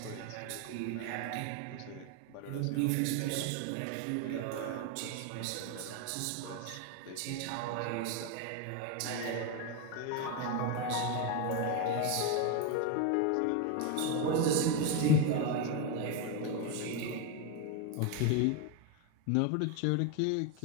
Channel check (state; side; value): different; both; correlation 0.02